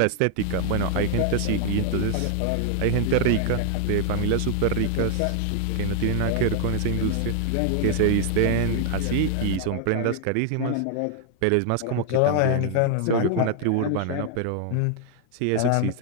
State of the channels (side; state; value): both; different; correlation 0.00